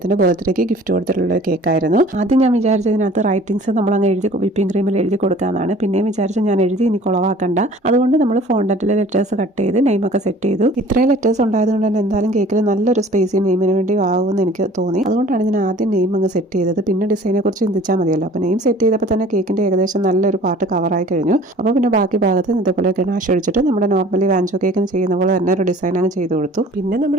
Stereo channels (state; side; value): normal; both; correlation 0.48